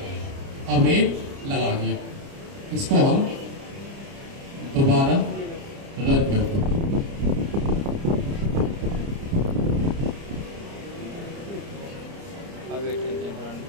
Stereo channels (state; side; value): late; left; 30 ms